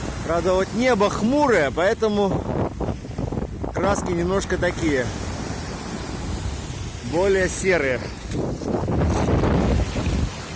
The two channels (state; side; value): identical; both; correlation 1.00